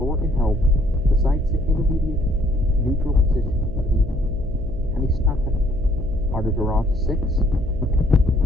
in hell, besides the intermediate neutral position of the Hanistakan. Artavirat 6,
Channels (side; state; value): right; noise; hum, 12 dB below the sound